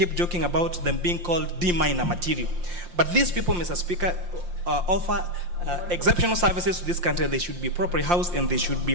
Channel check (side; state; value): left; late; 5.7 ms